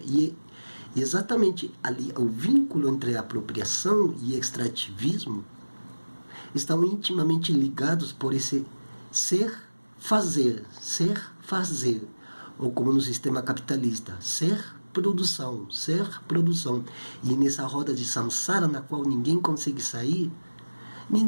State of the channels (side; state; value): both; inverted; correlation -1.00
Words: E exatamente ali, o vínculo entre apropriação e extrativismo estão intimamente ligados por esse ser, fazer, ou como no sistema capitalista, ser, produção. E nessa roda de samsara, na qual ninguém consegue sair,